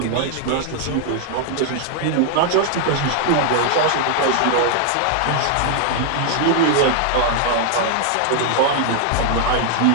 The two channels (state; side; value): different; both; correlation 0.00